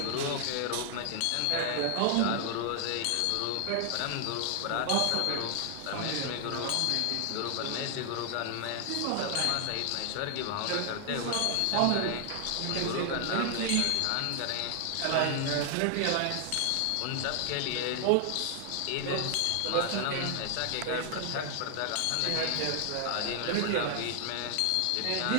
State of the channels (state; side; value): different; both; correlation 0.00